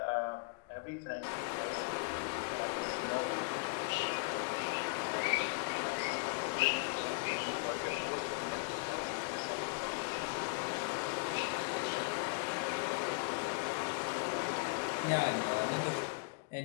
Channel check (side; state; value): right; quieter; 32.4 dB